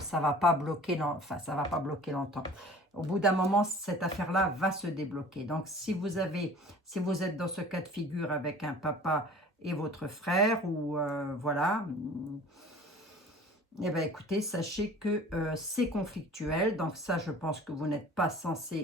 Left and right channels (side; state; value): both; normal; correlation 0.45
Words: va pas bloquer longtemps. Au bout d'un moment, cette affaire-là va se débloquer. Donc, si vous êtes dans ce cas de figure avec un papa et votre frère, ou voilà, eh bien, écoutez, sachez que c'est conflictuel. Donc, ça, je pense que vous n'êtes pas